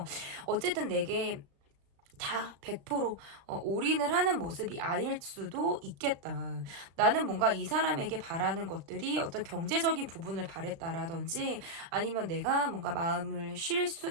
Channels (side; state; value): left; late; 36 ms